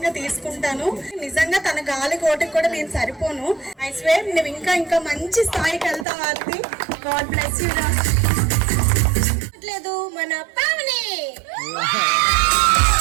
గా తీసుకుంటాను. నిజంగా తన గాలి కోటకి కూడా నేను సరిపోను. ఐ స్వేర్ నువ్వు ఇంకా ఇంకా మంచి స్థాయికి వెళ్తావు ఆర్తి. God bless you. లేదు మన పావని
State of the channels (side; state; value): left; drops out; at 6.1 s